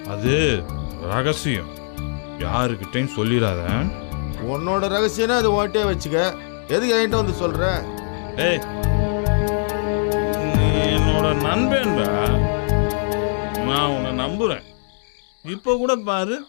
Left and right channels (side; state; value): right; silent; digital silence